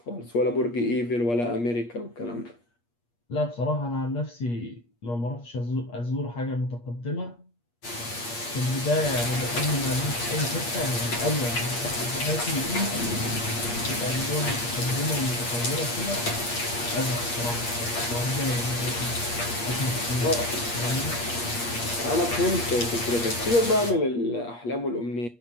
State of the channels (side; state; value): right; late; 8.5 ms